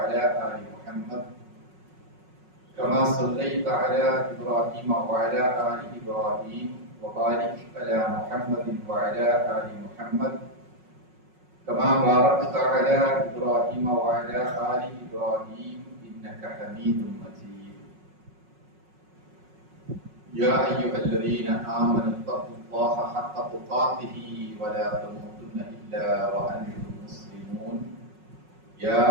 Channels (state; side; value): late; left; 5.4 ms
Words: آل محمد كما صليت على إبراهيم وعلى آل إبراهيم وبارك على محمد وعلى آل محمد كما باركت على إبراهيم وعلى آل إبراهيم إنك حميد مجيد. يا أيها الذين آمنوا اتقوا الله حق تقاته ولا تموتن إلا وأنتم مسلمون. يا